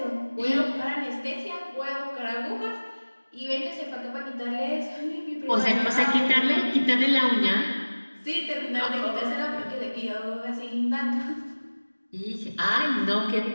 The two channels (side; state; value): both; inverted; correlation -1.00